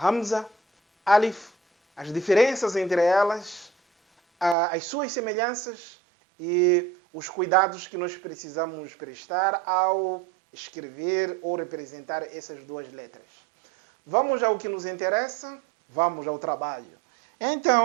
Alif, as diferenças entre elas, as suas semelhanças e os cuidados que nós precisamos prestar ao escrever ou representar essas duas letras. Vamos ao que nos interessa, vamos ao trabalho.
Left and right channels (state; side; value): drops out; left; at 4.5 s